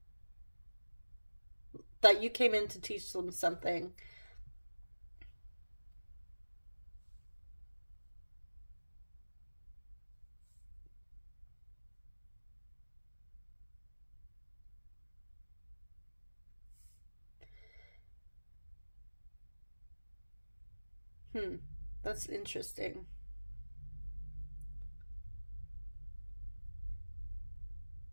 That you came in to teach them something. That's interesting.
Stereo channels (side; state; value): both; inverted; correlation -1.00